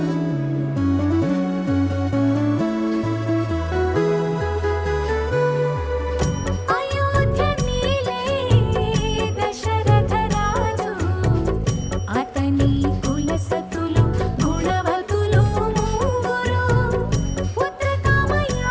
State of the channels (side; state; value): both; identical; correlation 1.00